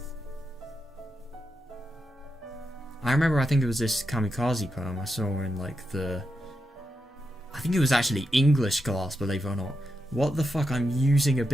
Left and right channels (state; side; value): normal; both; correlation 0.86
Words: I remember, I think it was this kamikaze poem I saw in like I think it was actually English class, believe it or not. What the fuck, I'm using a